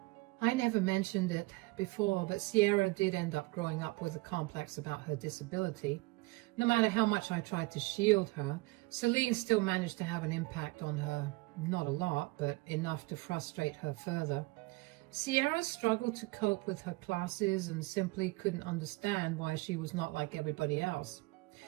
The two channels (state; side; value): quieter; left; 24.1 dB